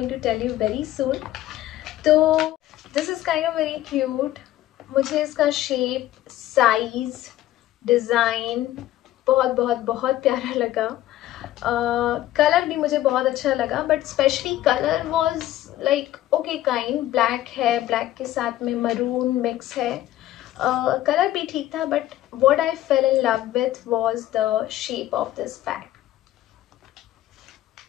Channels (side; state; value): right; quieter; 14.2 dB